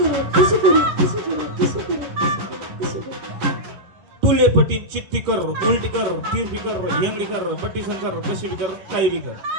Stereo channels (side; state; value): left; late; 10 ms